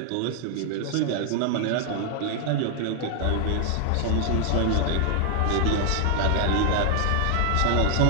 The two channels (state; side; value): different; both; correlation 0.00